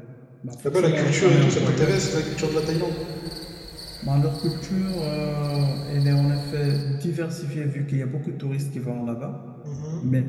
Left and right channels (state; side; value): identical; both; correlation 1.00